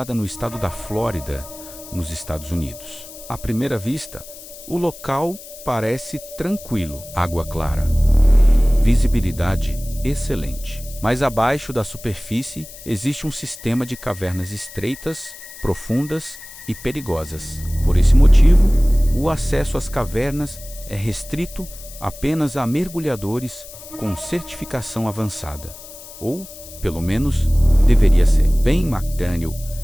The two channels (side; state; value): left; noise; hiss, 16 dB below the sound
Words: no estado da Flórida, nos Estados Unidos. À primeira vista, o local parece tranquilo, água clara, visibilidade excelente. Mas abaixo da superfície existe um sistema de cavernas estreitas, profundas e perigosas. Por esse motivo, o acesso às cavernas é restrito apenas a mergulhadores com certificação avançada, ou, pelo menos, deveria ser. Ben McDaniel